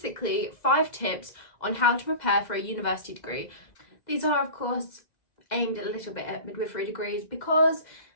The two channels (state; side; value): late; right; 2.0 ms